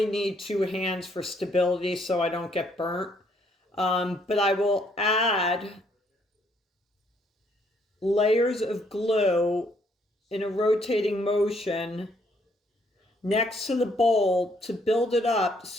need two hands for stability so I don't get burnt. But I will add layers of glue in a rotating motion next to the bowl to build it up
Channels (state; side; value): normal; both; correlation 0.68